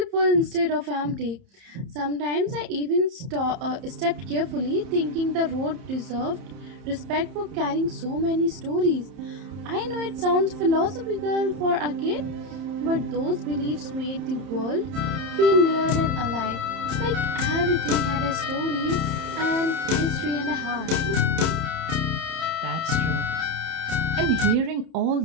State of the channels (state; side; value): late; left; 30 ms